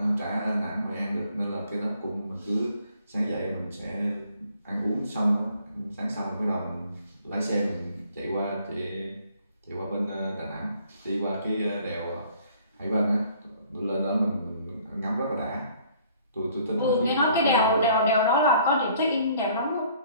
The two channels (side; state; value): both; inverted; correlation -0.59